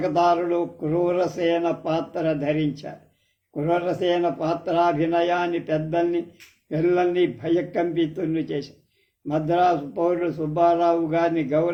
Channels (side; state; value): both; identical; correlation 1.00